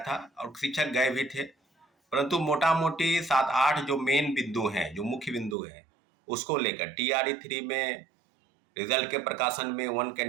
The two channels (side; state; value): left; drops out; at 5.6 s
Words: और शिक्षक गए भी थे, परंतु मोटा मोटी 7-8 जो मेन बिंदु हैं, जो मुख्य बिंदु हैं उसको लेकर टीआरई 3 में रिजल्ट के प्रकाशन में 1